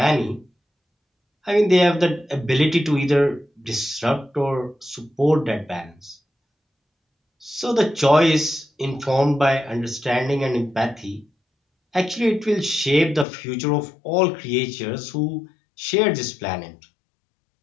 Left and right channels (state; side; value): drops out; right; at 13.2 s